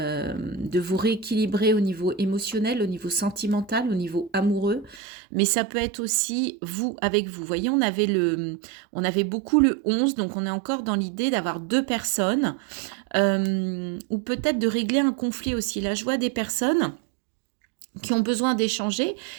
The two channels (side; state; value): left; drops out; at 5.0 s